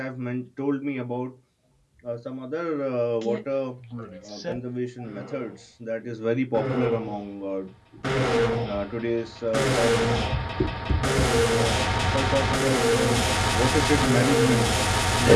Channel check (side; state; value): both; identical; correlation 1.00